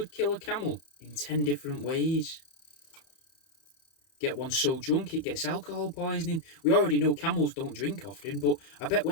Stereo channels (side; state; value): right; late; 31 ms